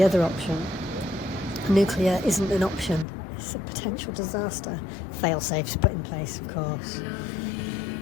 other option. Nuclear isn't an option, it's a potential disaster. Fail-safes put in place, of course.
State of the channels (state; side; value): drops out; right; at 3.1 s